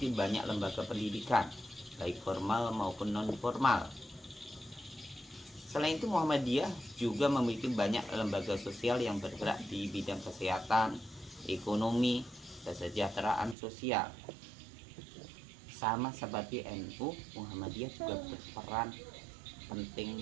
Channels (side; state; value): left; drops out; at 13.6 s